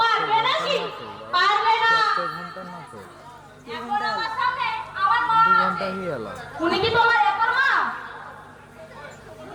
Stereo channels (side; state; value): both; identical; correlation 1.00